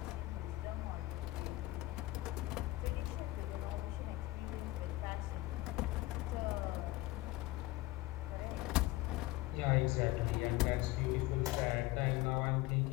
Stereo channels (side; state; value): right; quieter; 18.7 dB